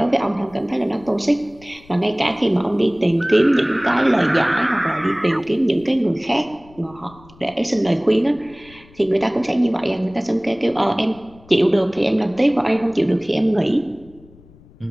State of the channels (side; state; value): left; noise; rumble, 25 dB below the sound